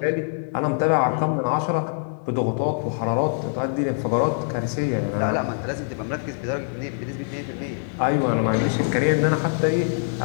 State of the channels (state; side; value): silent; right; digital silence